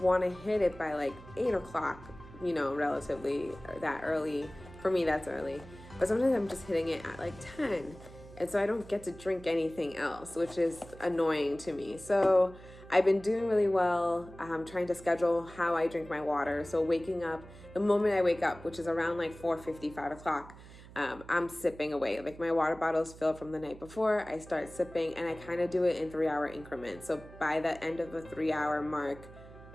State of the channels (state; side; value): noise; right; hum, 18 dB below the sound